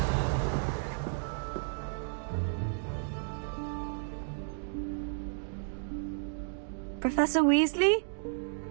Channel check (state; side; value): silent; left; digital silence